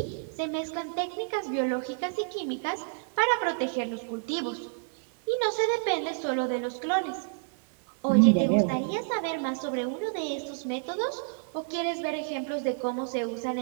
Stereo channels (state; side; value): silent; left; digital silence